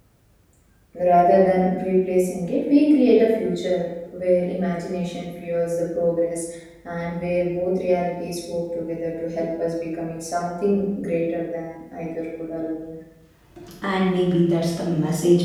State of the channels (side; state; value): both; identical; correlation 1.00